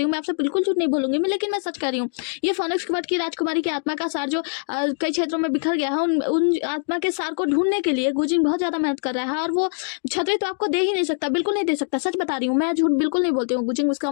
हूँ, मैं आपसे बिल्कुल झूठ नहीं बोलूंगी मैं, लेकिन मैं सच कह रही हूँ। ये फोनिक्स क्वार्ट की राजकुमारी की आत्मा का सार जो कई क्षेत्रों में बिखर गया है, उन आत्मा के सार को ढूंढने के लिए गुजिंग बहुत ज्यादा मेहनत कर रहा है, और वो छतरी तो आपको दे ही नहीं सकता, बिल्कुल नहीं दे सकता, सच बता रही हूँ मैं, झूठ बिल्कुल नहीं बोलती हूँ। गुजिंग उसका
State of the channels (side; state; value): right; silent; 61 dB below the other